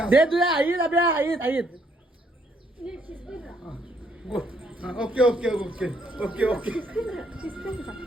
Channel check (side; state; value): both; normal; correlation 0.70